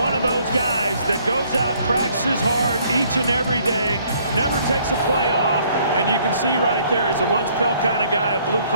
of those guys that goes out, practices hard each and every day, never takes a play off, and you can see right there, he's a lunch pail kind of guy, a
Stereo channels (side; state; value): both; inverted; correlation -0.63